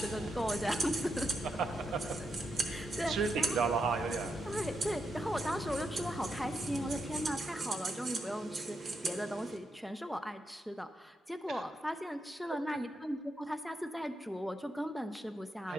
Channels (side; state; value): both; normal; correlation 0.84